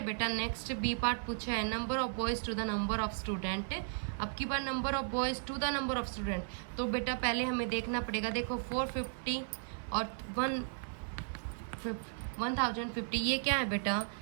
बेटा नेक्स्ट बी पार्ट पूछा है number of boys to the number of student. अब की बार number of boys to the number of student, तो बेटा पहले हमें देखना पड़ेगा। देखो 450 और 1050, ये क्या है बेटा,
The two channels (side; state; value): left; silent; 54 dB below the other